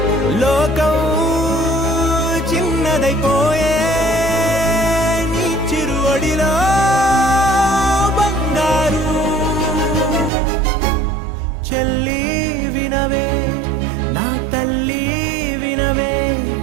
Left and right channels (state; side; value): drops out; left; at 10.3 s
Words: లోకం చిన్నదైపోయే నీ చిరువడిలో బంగారు. చెల్లి వినవే, నా తల్లి వినవే,